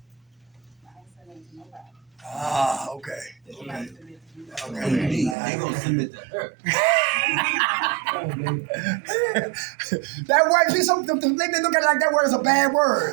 nothing to nobody. Ah, okay. They gonna submit to her. That word, see, some they look at it like that word is a bad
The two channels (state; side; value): drops out; left; at 5.4 s